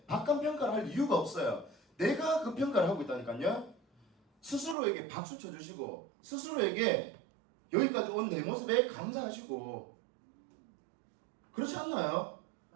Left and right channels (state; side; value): drops out; left; at 4.8 s